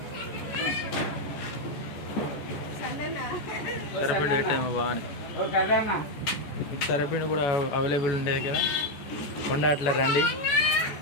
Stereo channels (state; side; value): late; right; 14 ms